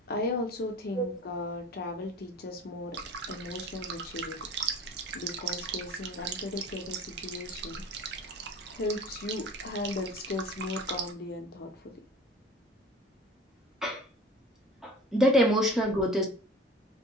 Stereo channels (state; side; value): normal; both; correlation 0.41